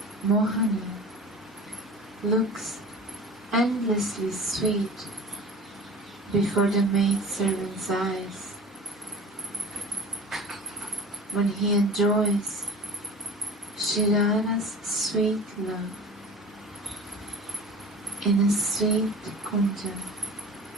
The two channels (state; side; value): normal; both; correlation 0.38